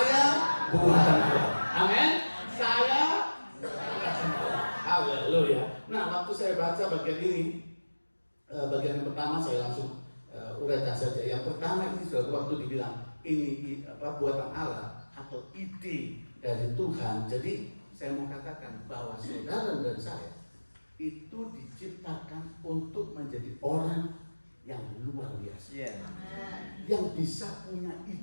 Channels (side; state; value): both; inverted; correlation -1.00